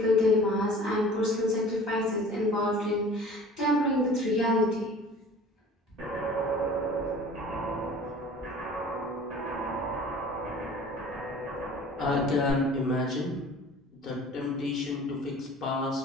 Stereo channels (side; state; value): both; normal; correlation 0.45